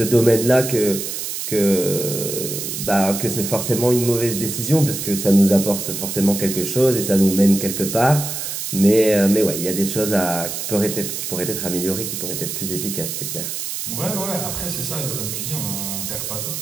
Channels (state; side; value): noise; right; hiss, 5 dB below the sound